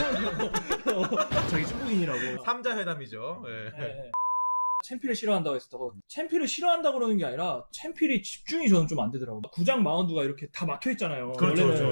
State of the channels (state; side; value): inverted; both; correlation -1.00